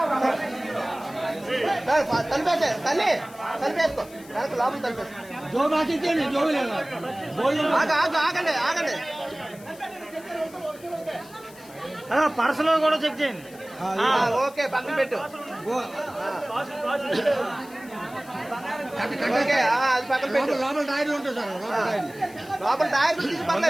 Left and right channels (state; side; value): noise; left; hiss, 22 dB below the sound